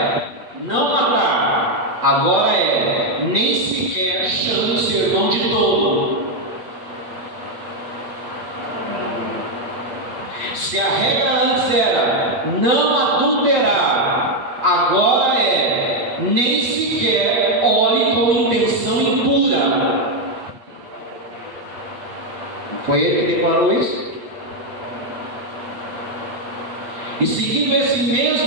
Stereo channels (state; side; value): late; left; 8.1 ms